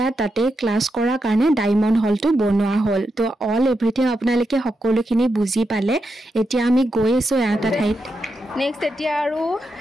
তাতে ক্লাস কৰা কাৰণে ডায়মণ্ড হলটো বনোৱা হল তো অল এভৰিথিং আপোনালোকে সকলোখিনি বুজি পালে এতিয়া আমি গৈ আছো এটা ঠাইত নেক্সট এতিয়া আৰু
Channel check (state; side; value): normal; both; correlation 0.85